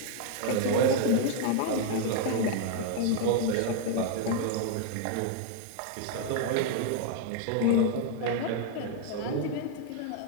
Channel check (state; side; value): different; both; correlation 0.00